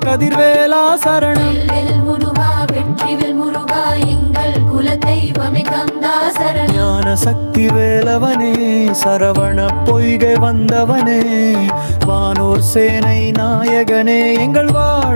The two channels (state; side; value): inverted; both; correlation -1.00